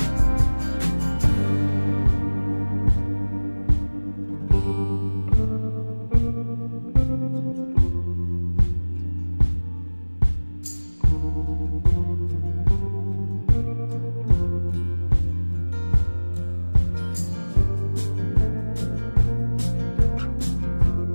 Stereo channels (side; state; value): both; inverted; correlation -1.00